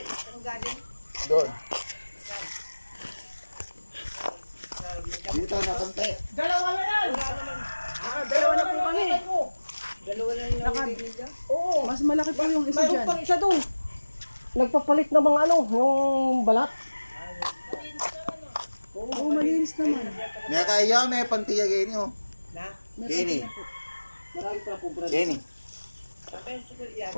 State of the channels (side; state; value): both; inverted; correlation -1.00